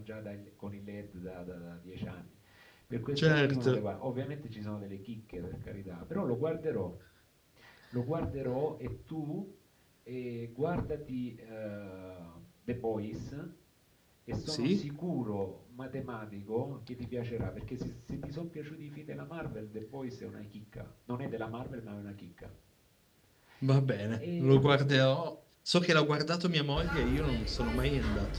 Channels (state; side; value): identical; both; correlation 1.00